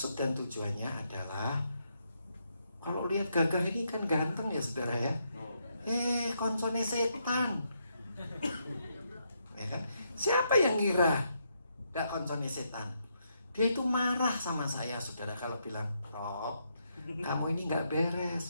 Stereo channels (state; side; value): inverted; both; correlation -0.78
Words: dan tujuannya adalah, kalau lihat Gagah ini kan ganteng ya saudara ya. Koncone setan. Ya kan? Siapa yang ngira gak koncone setan? Dia itu marah sama saya saudara kalau bilang, Rob, kamu ini gak